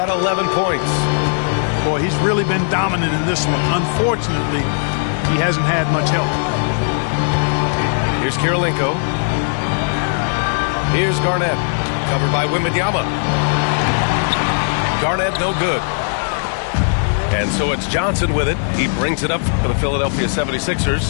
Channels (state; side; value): silent; right; 62 dB below the other